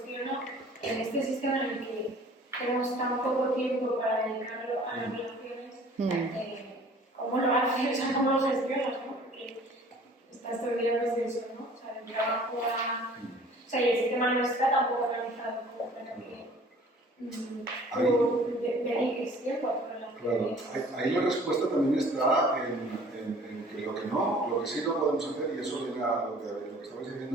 en este sistema en el que tenemos tan poco tiempo para dedicarlo a las relaciones, ¿cómo lo haces? O sea, ¿cómo lo gestionas? ¿No? Porque estás todo el día pues de eso, ¿no? O sea, del trabajo a... O sea, y el sistema no está tampoco organizado como para que dediques tiempo a tu relación. Claro, ahí la respuesta también está en que lo que sí no podemos hacer, y eso viene a lo que estabais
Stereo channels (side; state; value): both; normal; correlation 0.51